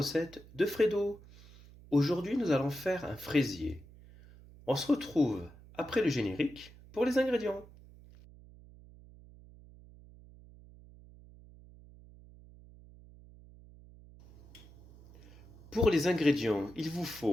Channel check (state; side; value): noise; right; hum, 22 dB below the sound